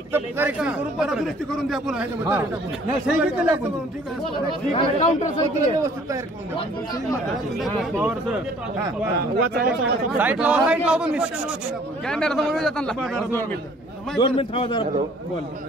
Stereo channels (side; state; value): both; normal; correlation 0.56